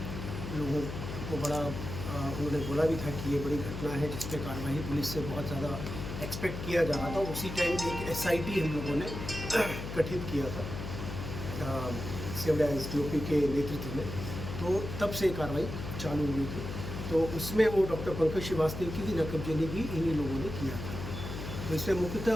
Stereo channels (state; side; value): noise; left; hum, 7 dB below the sound